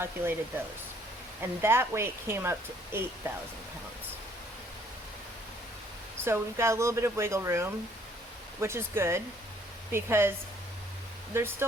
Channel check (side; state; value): both; normal; correlation 0.62